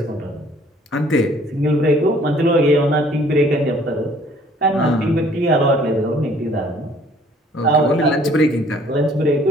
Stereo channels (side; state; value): both; normal; correlation 0.57